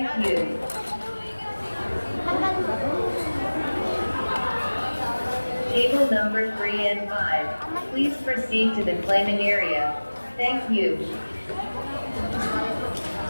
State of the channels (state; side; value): inverted; both; correlation -1.00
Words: you. Table number 3 and 5. Please proceed to the claiming area. Thank you.